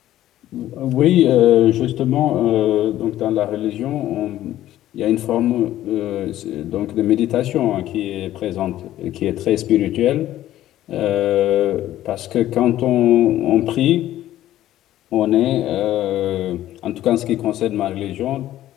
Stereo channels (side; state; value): right; quieter; 13.5 dB